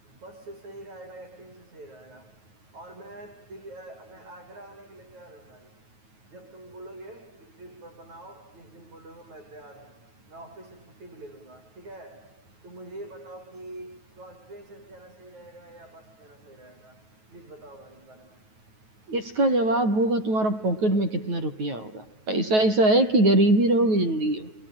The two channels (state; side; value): late; left; 9.3 ms